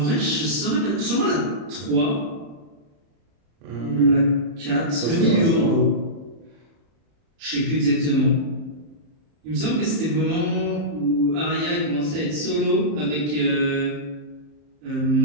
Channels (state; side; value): late; left; 34 ms